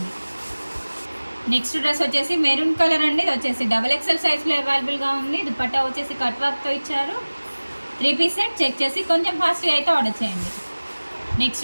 నెక్స్ట్ డ్రెస్ వచ్చేసి మెరూన్ కలర్ అండి. ఇది వచ్చేసి XXL సైజ్లో అవైలబుల్గా ఉంది. దుపట్టా వచ్చేసి కట్ వర్క్తో ఇచ్చారు. 3 పీస్ సెట్. చెక్ చేసి కొంచెం ఫాస్ట్గా అయితే ఆర్డర్ చేయండి.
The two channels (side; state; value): both; inverted; correlation -1.00